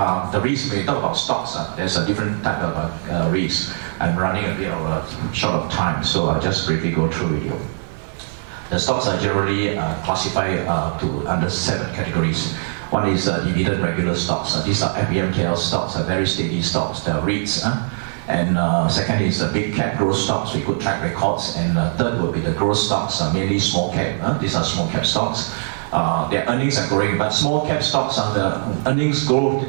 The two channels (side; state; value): left; silent; 55 dB below the other